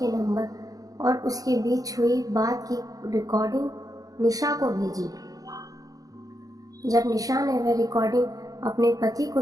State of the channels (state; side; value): late; left; 0.17 ms